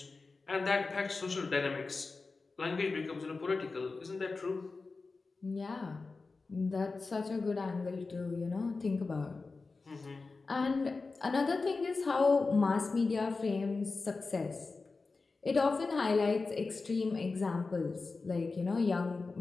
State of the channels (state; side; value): quieter; right; 4.0 dB